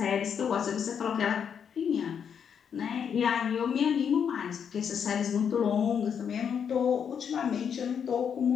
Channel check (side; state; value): right; quieter; 7.5 dB